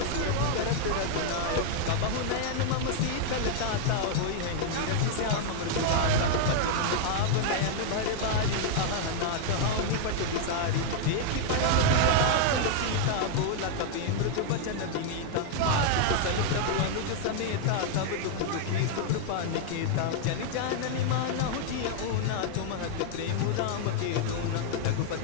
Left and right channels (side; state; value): both; different; correlation 0.00